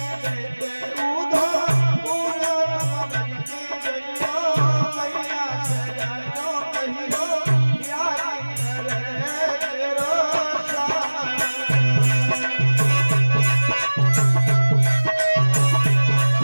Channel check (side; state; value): both; inverted; correlation -1.00